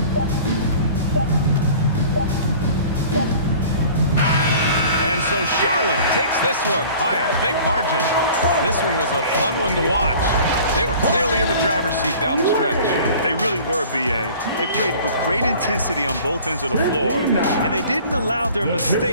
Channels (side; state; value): both; inverted; correlation -0.46